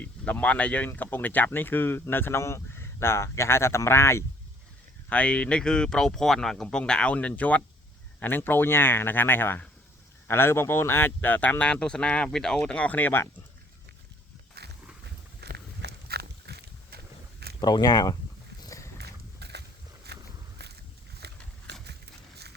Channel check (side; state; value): both; normal; correlation 0.61